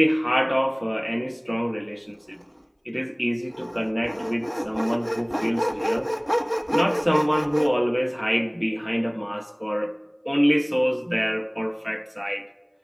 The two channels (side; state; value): both; identical; correlation 1.00